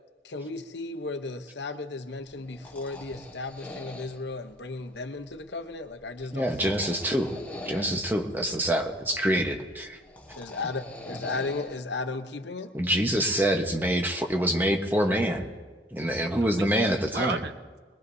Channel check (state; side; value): normal; both; correlation 0.55